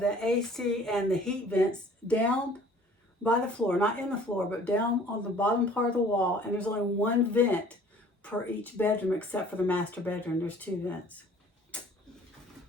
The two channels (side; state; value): both; normal; correlation 0.52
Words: the AC and the heat vents down by the floor, not in the floor, but down on the bottom part of the wall. And there's only 1 vent per each bedroom, except for the master bedroom. There's 2 vents.